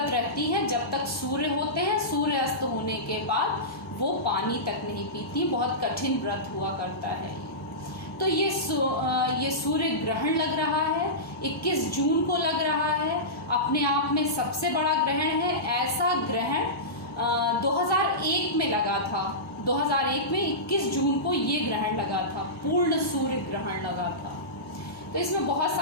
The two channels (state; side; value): normal; both; correlation -0.17